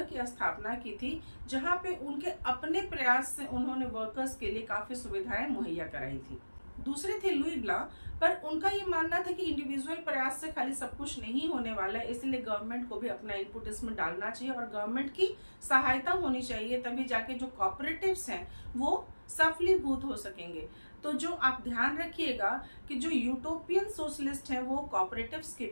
की स्थापना की थी जहां पे उनके अपने प्रयास से उन्होंने वर्कर्स के लिए काफी सुविधाएं मुहैया कराई थी। दूसरे थे लुई ब्लां, पर उनका ये मानना था कि इंडिविजुअल प्रयास से खाली सब कुछ नहीं होने वाला है, इसलिए गवर्नमेंट को भी अपना इनपुट इसमें डालना चाहिए और गवर्नमेंट की सहायता होनी चाहिए, तभी जाके जो कॉपरेटिव्स हैं वो सफलीभूत हो सकेंगे। तो जो आप ध्यान रखिएगा कि जो यूटोपियन सोशलिस्ट हैं वो कॉपरेटिव्स की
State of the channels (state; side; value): inverted; both; correlation -1.00